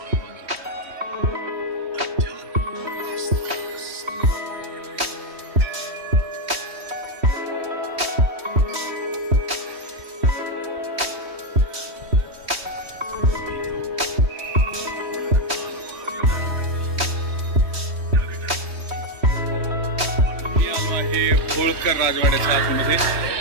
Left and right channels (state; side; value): late; left; 3.2 ms